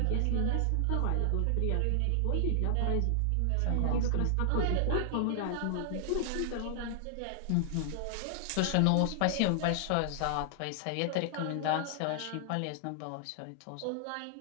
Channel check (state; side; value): different; both; correlation 0.00